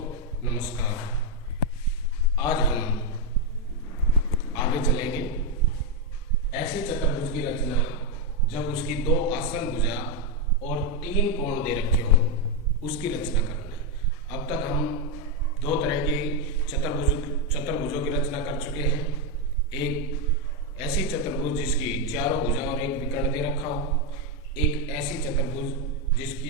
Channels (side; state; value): both; normal; correlation 0.03